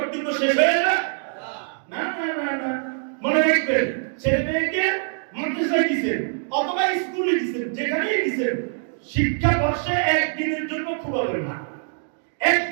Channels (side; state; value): left; silent; digital silence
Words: শেষ হয়ে না? না না না না, মনে রাখবেন, ছেলে মেয়েকে মাদ্রাসায় দিয়েছেন অথবা স্কুলে দিয়েছেন, যেখানেই দিয়েছেন, শিক্ষা বর্ষে একদিনের জন্য খুবাবেন না।